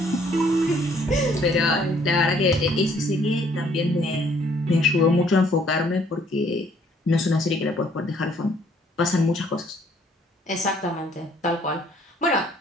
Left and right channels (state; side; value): normal; both; correlation 0.63